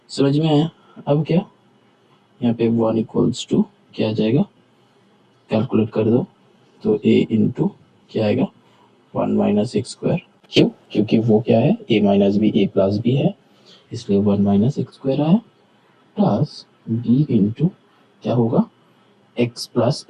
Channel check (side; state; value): both; identical; correlation 1.00